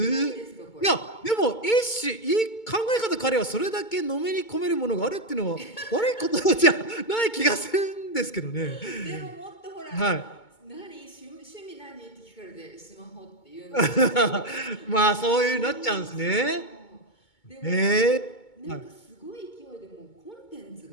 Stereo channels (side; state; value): right; late; 2.2 ms